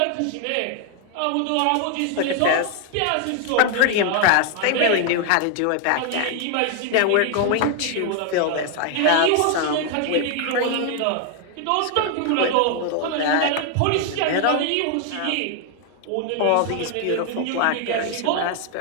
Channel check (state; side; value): different; both; correlation 0.00